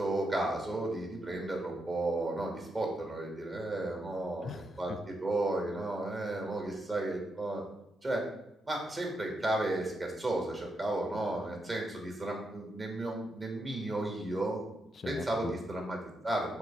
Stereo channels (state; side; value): normal; both; correlation 0.83